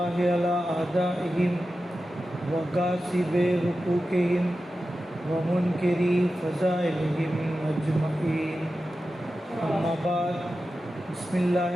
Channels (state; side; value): normal; both; correlation 0.93